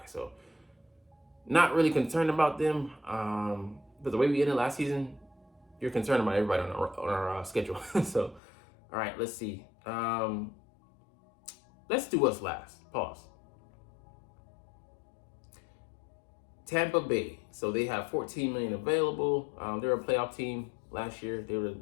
So not really concerned about them. But the way we ended last season, you're concerned about everybody on our schedule. So, all right, let's see. Let's do what's last. Pause. Tampa Bay. So they have $14 million available. They're a playoff team. Last year, they were the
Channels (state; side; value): drops out; right; at 8.4 s